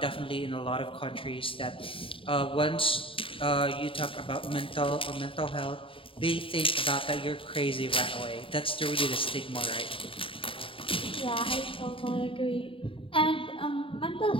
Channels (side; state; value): right; late; 0.26 ms